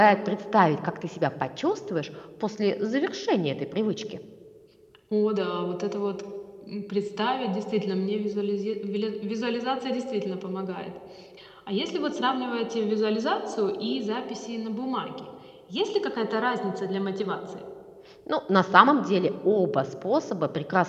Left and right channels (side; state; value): both; identical; correlation 1.00